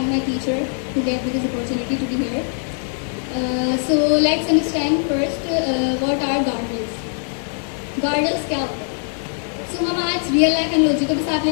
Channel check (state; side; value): silent; right; 65 dB below the other